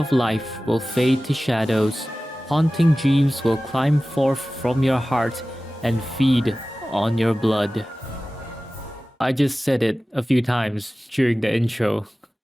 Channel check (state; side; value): normal; both; correlation 0.96